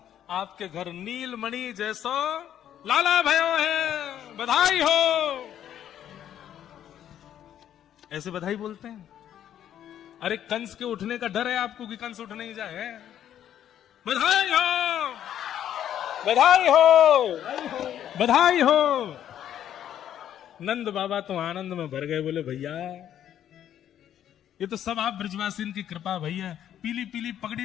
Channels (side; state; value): right; quieter; 10.5 dB